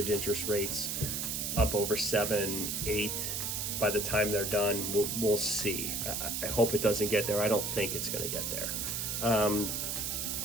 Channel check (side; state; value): right; noise; hiss, 1 dB below the sound